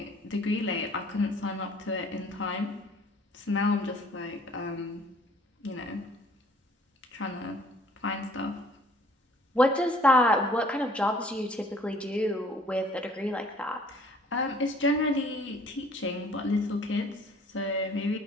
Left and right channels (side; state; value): both; normal; correlation 0.55